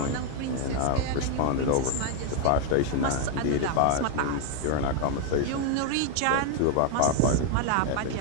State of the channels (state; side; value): different; both; correlation 0.00